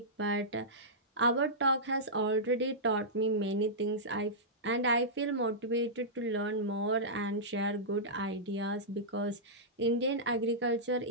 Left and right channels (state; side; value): normal; both; correlation -0.14